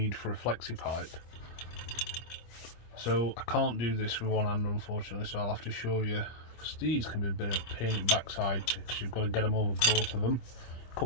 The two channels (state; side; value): late; right; 25 ms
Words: for a flexi pipe. So I can't do this with one hand, unfortunately, so I'll have to show you, because these can be a bit of a pain in the backside, because you've got to get them over both of them,